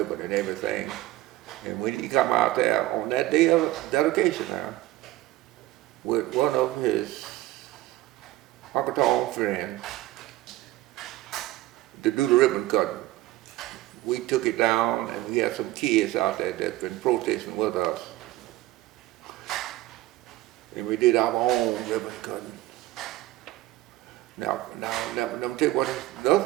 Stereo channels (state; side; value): quieter; left; 16.7 dB